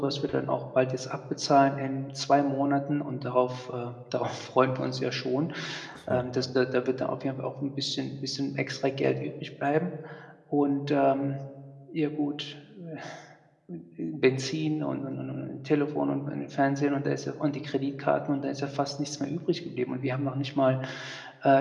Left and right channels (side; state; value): both; identical; correlation 1.00